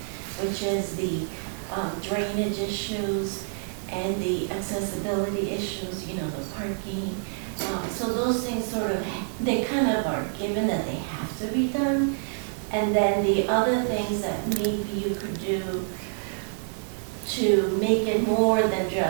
which is the drainage issues and the accessibility issues, you know, the parking. So those things sort of, they kind of are given that they have to be done. And then the other things that maybe you could do to make it more than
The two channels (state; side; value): silent; left; digital silence